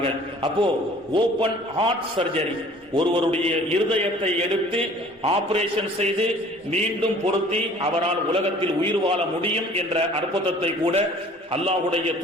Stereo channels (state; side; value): normal; both; correlation 0.51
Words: அப்போ ஓபன் ஹார்ட் சர்ஜரி, ஒருவருடைய இருதயத்தை எடுத்து ஆபரேஷன் செய்து மீண்டும் பொருத்தி அவரால் உலகத்தில் உயிர் வாழ முடியும் என்ற அற்புதத்தை கூட அல்லாஹ்வுடைய